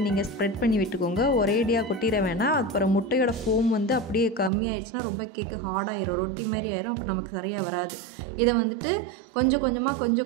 நீங்கள் ஸ்ப்ரெட் பண்ணி விட்டுக்கோங்க. ஒரேடியாக கொட்டிட வேணாம். அப்புறம் முட்டையோட ஃபோம் வந்து அப்படியே கம்மியாயிடுச்சுன்னா ரொம்ப கேக்கு ஹார்டாயிரும், ரொட்டி மாதிரி ஆயிரும். அப்புறம் நமக்கு சரியாக வராது. இதை வந்துட்டு கொஞ்சம்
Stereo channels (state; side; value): drops out; left; at 4.5 s